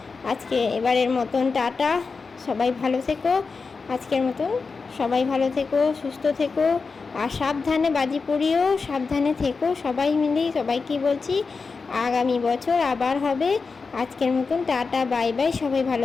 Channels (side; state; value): right; quieter; 4.6 dB